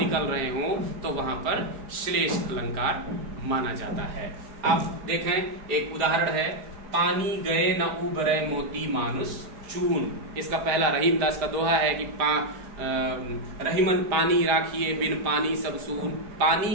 रहे हो तो वहां पर श्लेष अलंकार माना जाता है। आप देखें एक उदाहरण है, पानी गए न उबरे मोती मानुष चून। इसका पहला रहीम दास का दोहा है कि रहीमन पानी राखिए बिन पानी सब सून,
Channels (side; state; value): left; late; 4.9 ms